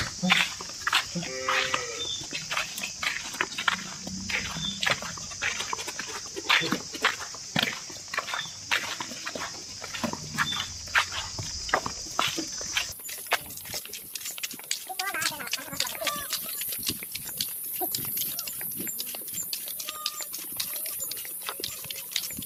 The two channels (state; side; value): identical; both; correlation 1.00